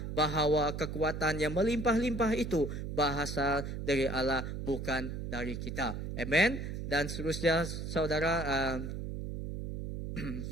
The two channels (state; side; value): noise; right; hum, 5 dB below the sound